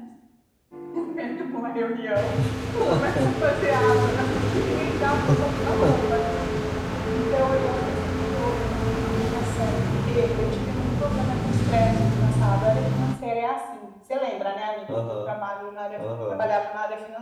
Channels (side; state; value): both; identical; correlation 1.00